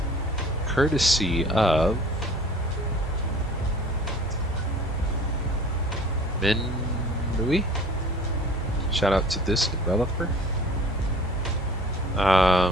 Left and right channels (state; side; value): normal; both; correlation 0.47